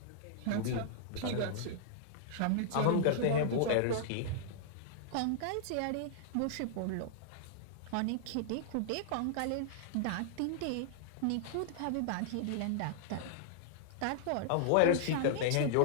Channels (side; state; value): both; different; correlation -0.01